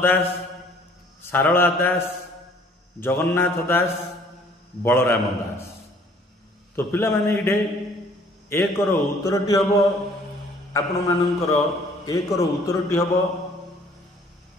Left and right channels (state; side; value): normal; both; correlation 0.57